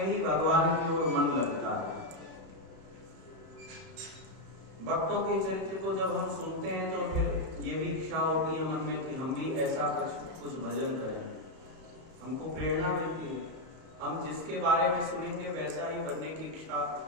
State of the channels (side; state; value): left; late; 31 ms